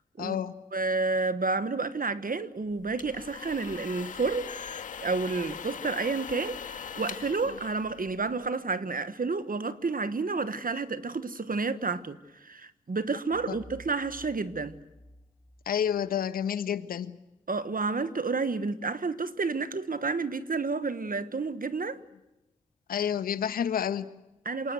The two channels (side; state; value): both; normal; correlation 0.28